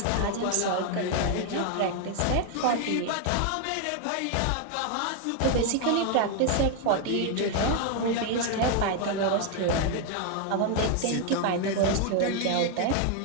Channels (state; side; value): different; both; correlation 0.00